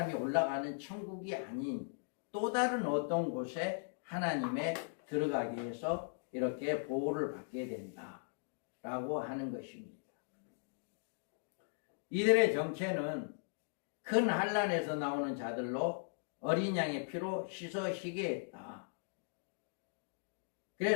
올라가는 천국이 아닌 또 다른 어떤 곳에 하나님의 들어가게 해서 이렇게 보호를 받게 된다라고 하는 것입니다. 이들의 정체는 큰 환난에서 나오는 자들로 어린 양의 피로 씻어시게 했다.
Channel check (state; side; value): silent; right; digital silence